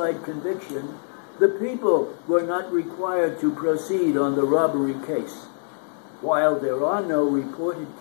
conviction, the people were not required to proceed on the robbery case. While there are no reported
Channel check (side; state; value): right; silent; 62 dB below the other